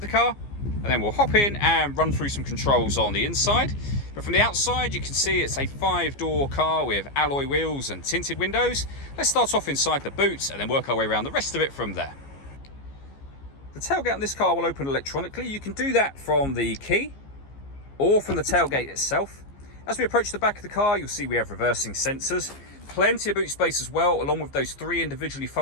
the car, and then we'll hop in and run through some controls on the inside. But from the outside, you can see it's a 5-door car with alloy wheels and tinted windows. Let's start off inside the boot and then work our way around the rest of it from there. The tailgate on this car will open electronically. You can do that from the key or from the tailgate itself. As we approach the back of the car, you'll see we have reversing sensors. Plenty of boot space as well, along with those 3 individually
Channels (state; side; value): late; right; 15 ms